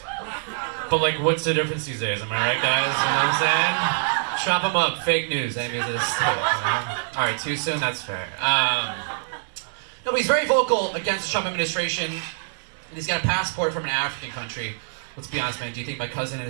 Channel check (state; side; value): silent; left; digital silence